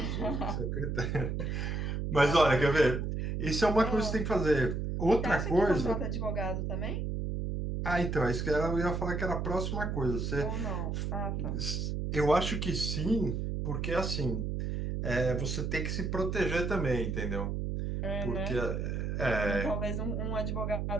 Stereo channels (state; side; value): noise; right; hum, 2 dB below the sound